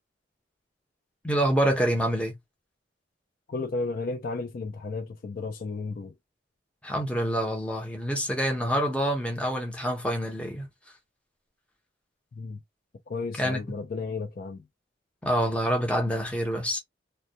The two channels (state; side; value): normal; both; correlation 0.67